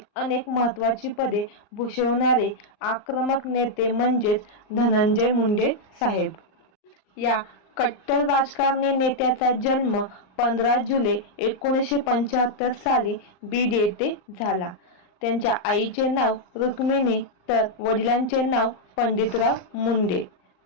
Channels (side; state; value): right; late; 39 ms